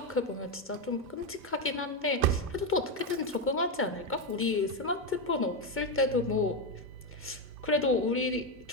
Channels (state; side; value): normal; both; correlation 0.08